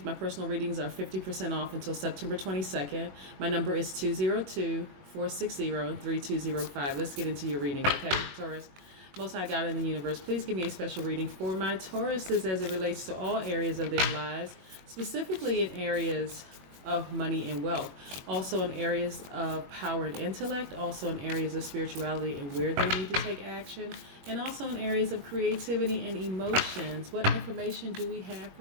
personal readings are 50% off until September 22nd. My number is 202-460-3205. Let's get into your reading, okay, Taurus? Most High God in the universe, please give me a special reading for my Tauruses as it relates to all areas of their lives, specifically in areas of money and wealth, also in areas of power and intellect, also in areas of spirituality and where they need to take action, and also in areas of creativity and emotions. What information do we have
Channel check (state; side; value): late; left; 21 ms